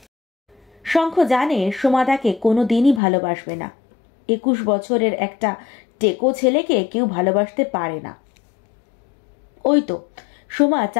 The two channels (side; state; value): right; drops out; at 3.0 s